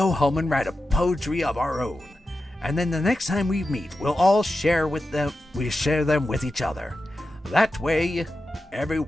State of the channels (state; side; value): normal; both; correlation 0.91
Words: home and write a poetry of our own. And then the next time we meet, we'll all share them with each other. That way,